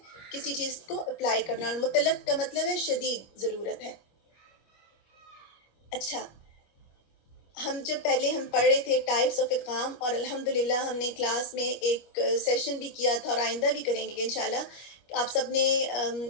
کسی چیز کو اپلائی کرنا، اور مطلق کا مطلب ہے شدید ضرورت ہے۔ اچھا، ہم پہلے پڑھ رہے تھے ٹائپس آف ادغام، اور الحمدللہ ہم نے کلاس میں ایک سیشن بھی کیا تھا، اور آئندہ بھی کریں گے انشاءاللہ۔ آپ سب نے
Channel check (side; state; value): right; late; 25 ms